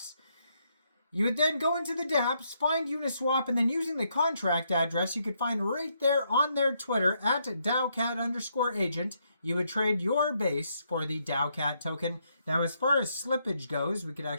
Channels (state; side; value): inverted; both; correlation -0.76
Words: You would then go into the dApps, find Uniswap, and then using the contract address you could find right there on their Twitter at Taocat_agent, you would trade your Base for the Taocat token. Now, as far as slippage goes, we could